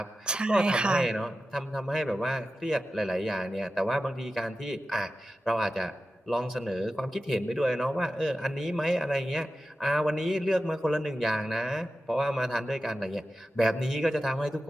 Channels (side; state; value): both; normal; correlation 0.93